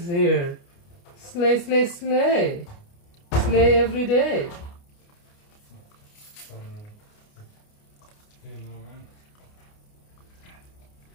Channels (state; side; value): late; right; 29 ms